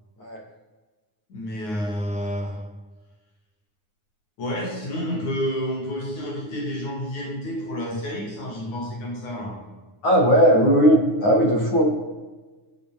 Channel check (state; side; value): late; right; 9.6 ms